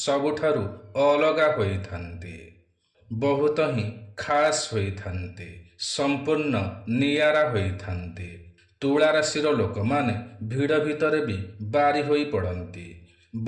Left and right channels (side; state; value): both; identical; correlation 1.00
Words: अलगा होइथान्ते, बहुत ही खास होइथान्ते, संपूर्ण नियारा होइथान्ते। तुला राशिर लोक माने भिड़ भितर भी बारी होई पड़ती,